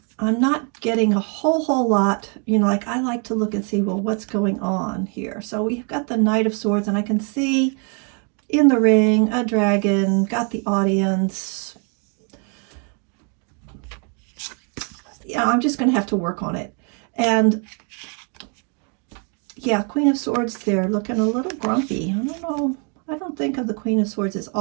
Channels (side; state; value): left; quieter; 38.3 dB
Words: I'm not getting a whole lot, you know, like I like to look and see, well, what's going on here? So we've got the Knight of Swords, and I can see in the ring, a dragon, got the audience. Yeah, I'm just going to have to work on it. And yeah, Queen of Swords there, looking a little grumpy. I don't know. I don't think of the Queen of Swords as